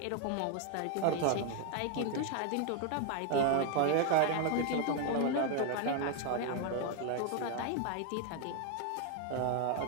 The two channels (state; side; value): different; both; correlation 0.01